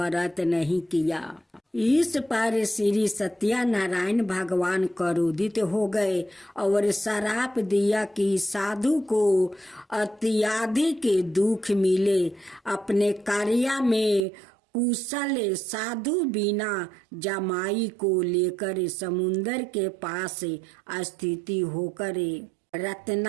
नहीं किया। इस पर श्री सत्यनारायण भगवान क्रोधित हो गए और श्राप दिया कि साधु को अत्यधिक दुख मिले। अपने कार्य में कुशल साधु बिना जमाई को लेकर समुन्दर के पास स्थिति होकर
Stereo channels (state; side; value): drops out; left; at 14.2 s